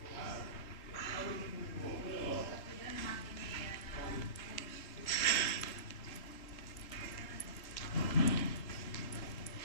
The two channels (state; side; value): late; right; 3.8 ms